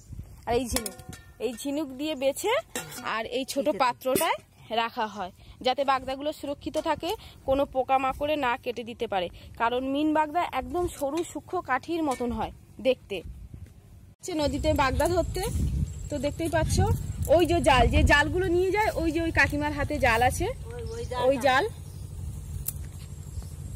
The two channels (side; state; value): both; identical; correlation 1.00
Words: আর এই ঝিনুক দিয়ে বেছে আর এই ছোট পাত্রটায় রাখা হয়, যাতে বাগদাগুলো সুরক্ষিত থাকে, কোনো পোকামাকড়ে না কেটে দিতে পারে। কারণ মিন বাগদা একদম সরু সূক্ষ্ম কাঠির মতন হয় দেখতে। নদীতে বাগদা ধরতে তো দেখতেই পাচ্ছ, ওই যে জালগুলো নিয়ে যায়, ওই যে ওই কাকিমার হাতে জাল আছে, ওই জাল,